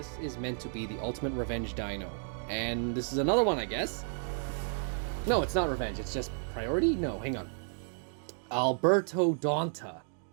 is meant to be the ultimate revenge dino. And this is another one, I guess. No, it's not revenge, it's just priority? No, hang on. Alberto Donta.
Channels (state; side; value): silent; left; 56 dB below the other